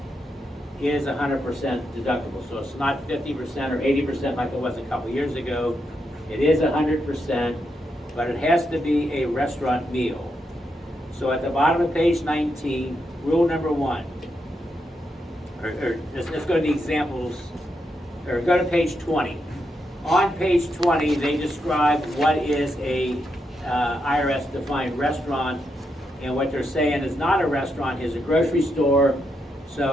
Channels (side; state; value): both; normal; correlation 0.83